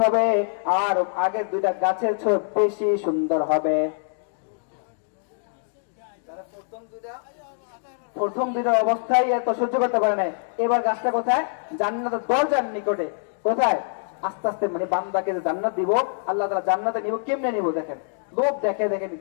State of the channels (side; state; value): right; silent; digital silence